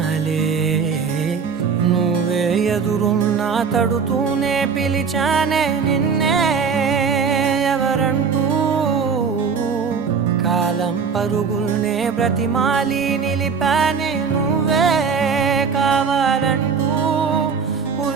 నువ్వే ఎదురున్నా తడుతూనే పిలిచానే నిన్నే ఎవరంటూ కాలం పరుగుల్నే బ్రతిమాలి నిలిపానే నువ్వే కావాలంటూ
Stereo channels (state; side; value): quieter; left; 5.9 dB